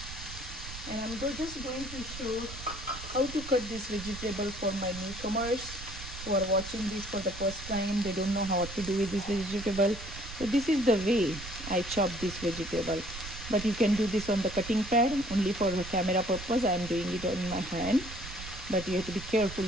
And I'm just going to show how to cut this vegetable for my newcomers who are watching this for the first time. They don't know how to do with this vegetable. So this is the way I chop this vegetable. But you can do this on the cutting pad. Only for the camera purpose, I am doing it on my hand. But you have to be careful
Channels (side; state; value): right; noise; rumble, 12 dB below the sound